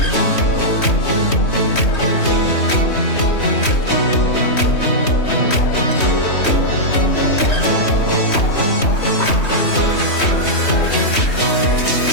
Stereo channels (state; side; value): late; right; 3.2 ms